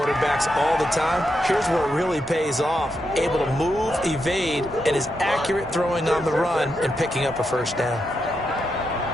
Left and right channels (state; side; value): normal; both; correlation 0.84